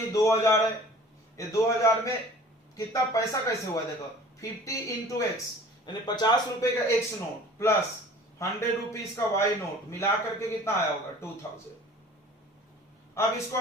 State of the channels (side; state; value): both; normal; correlation 0.46